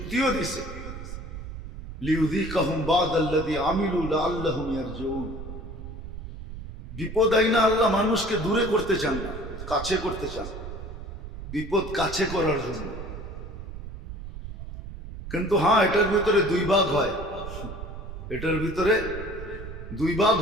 দিছে, লিউযীকাহুম বা'দাল্লাযী আমিলু লাআল্লাহুম ইয়ারজিউন। বিপদ আইনা আল্লাহ মানুষকে দূরে করতে চান না, কাছে করতে চান, বিপদ কাছে করার জন্য। কিন্তু হ্যাঁ, এটার ভিতরে দুই ভাগ হয়, এটার ভিতরে দুই ভাগ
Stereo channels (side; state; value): right; noise; rumble, 10 dB below the sound